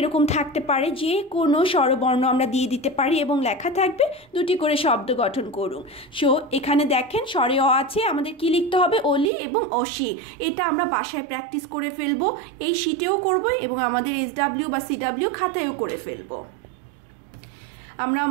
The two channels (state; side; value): drops out; left; at 9.3 s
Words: থাকতে পারে, যে কোনো স্বরবর্ণ আমরা দিয়ে দিতে পারি এবং লেখা থাকবে দুটি করে শব্দ গঠন করুন। সো এখানে দেখেন স্বরে অ আছে, আমাদের কি লিখতে হবে, অলি এবং অসি। এটা আমরা বাসায় প্র্যাকটিস করে ফেলবো, এই শিটেও করব এবং আমাদের SW বা CW খাতায়ও করে ফেলবো। আমরা